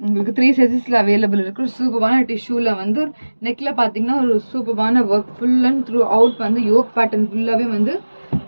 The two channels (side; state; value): both; inverted; correlation -1.00